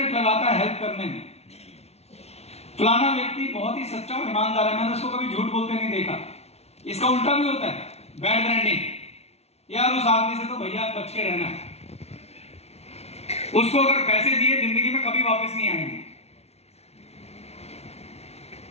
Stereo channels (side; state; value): right; late; 0.31 ms